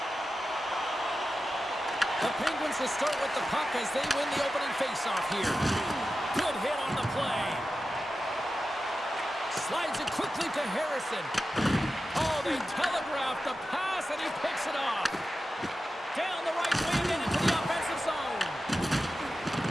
The Penguins will start with the puck as they win the opening faceoff here. Good hit on the play. Slides it quickly to Harrison. Oh, they telegraphed the pass, and he picks it off. Down the right wing and into the offensive zone.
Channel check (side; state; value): both; normal; correlation 0.92